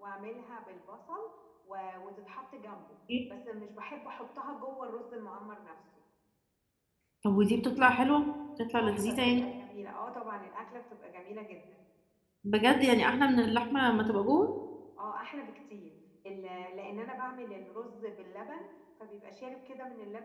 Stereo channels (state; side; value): identical; both; correlation 1.00